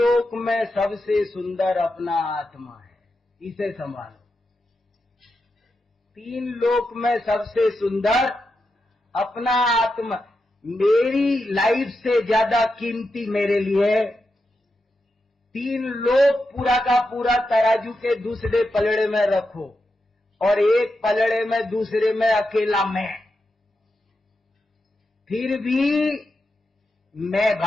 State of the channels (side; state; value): both; normal; correlation 0.87